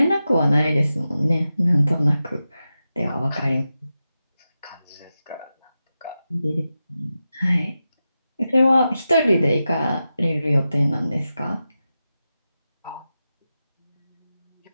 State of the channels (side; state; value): both; inverted; correlation -0.92